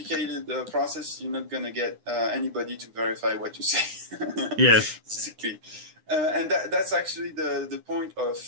process, you're not going to get anybody to verify what you say. Yes. Basically. And that's actually the point of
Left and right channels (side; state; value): left; late; 9.8 ms